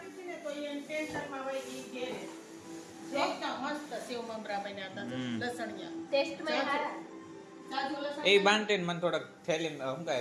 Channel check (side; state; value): both; identical; correlation 1.00